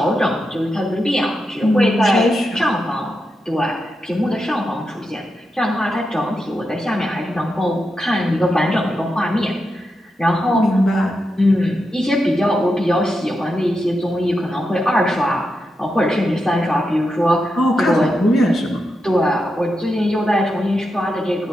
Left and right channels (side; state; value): both; normal; correlation 0.87